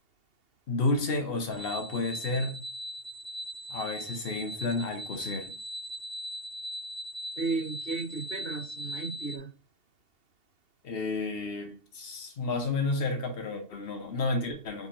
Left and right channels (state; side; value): late; right; 2.8 ms